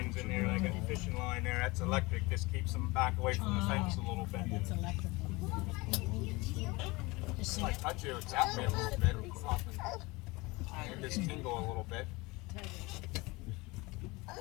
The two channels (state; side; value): quieter; right; 23.6 dB